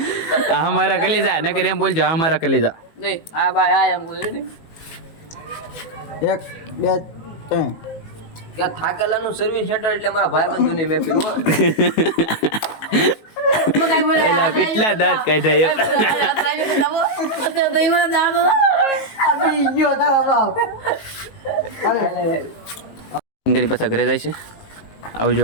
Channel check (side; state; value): right; late; 19 ms